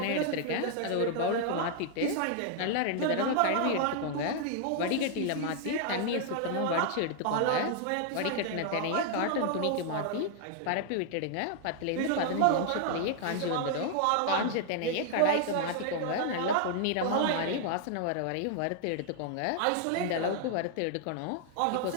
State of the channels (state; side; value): different; both; correlation 0.00